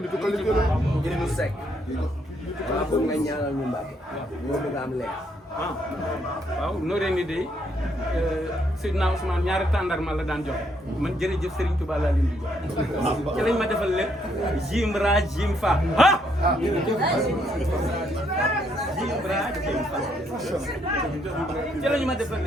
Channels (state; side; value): normal; both; correlation 0.72